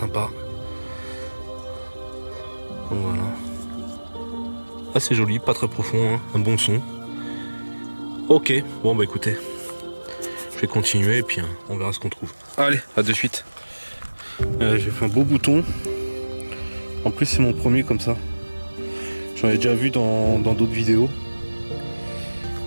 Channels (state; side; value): inverted; both; correlation -1.00